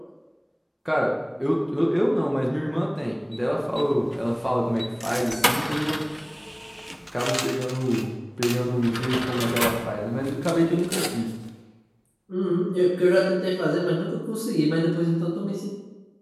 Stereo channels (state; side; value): identical; both; correlation 1.00